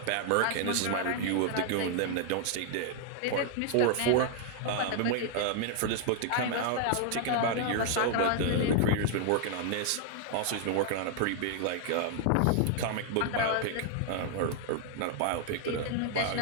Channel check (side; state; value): both; different; correlation 0.00